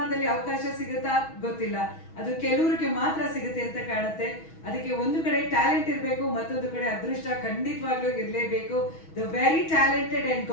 ಅವಕಾಶ ಸಿಗುತ್ತಾ ಗೊತ್ತಿಲ್ಲ. ಅದು ಕೆಲವರಿಗೆ ಮಾತ್ರ ಸಿಗುತ್ತೆ ಅಂತ ಕಾಣುತ್ತೆ. ಅದಕ್ಕೆ ಒಂದು ಕಡೆ ಟ್ಯಾಲೆಂಟ್ ಇರಬೇಕು, ಮತ್ತೊಂದು ಕಡೆ ಅದೃಷ್ಟ ಖಂಡಿತವಾಗ್ಲೂ ಇರಲೇಬೇಕು. The very talented and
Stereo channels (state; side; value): late; right; 6.2 ms